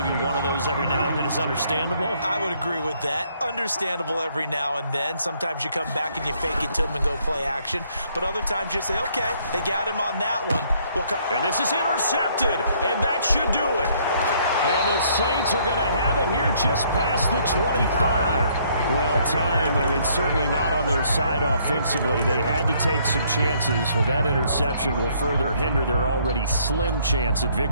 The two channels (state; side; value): inverted; both; correlation -0.66